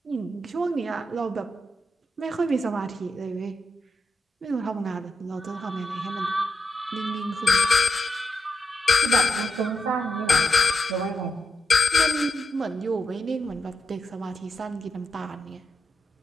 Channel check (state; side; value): normal; both; correlation 0.86